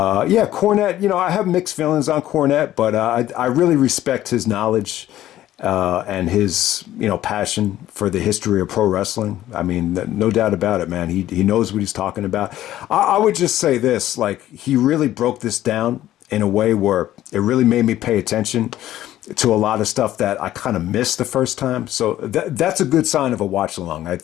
I have mixed feelings on Cornette, but I really respect his knowledge and his, passion for the history of pro wrestling. I mean, no doubt about it, man. He knows what he's talking about. I would just say this, like, he really broke this down in a way where it really made me pay attention to a lot of stuff that I kind of missed the first time. So that's a good sign of a watch along. Right?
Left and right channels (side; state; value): right; quieter; 13.5 dB